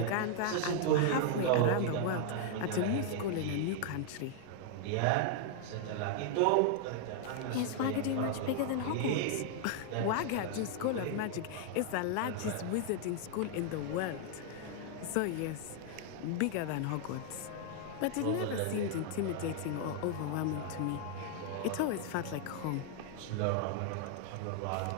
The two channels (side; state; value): both; different; correlation 0.00